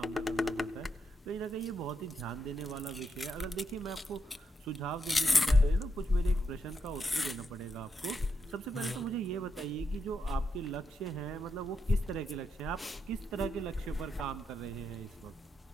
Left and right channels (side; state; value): both; normal; correlation 0.82